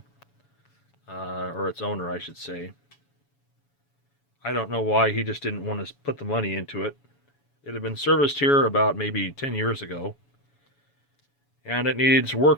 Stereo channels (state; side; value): late; right; 7.1 ms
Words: or its owner, I should say. I don't know why he just didn't want to put the money into it. It had been serviced here about maybe 10 years ago, and it needs